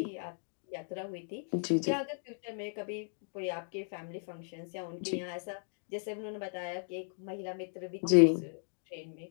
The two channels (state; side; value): silent; right; digital silence